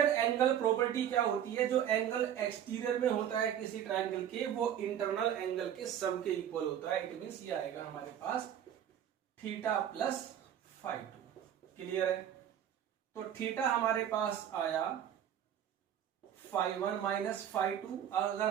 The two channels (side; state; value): left; quieter; 9.9 dB